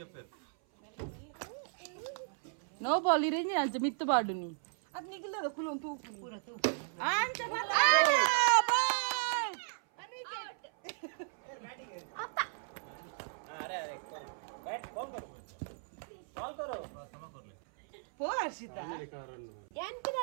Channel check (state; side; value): silent; left; 54 dB below the other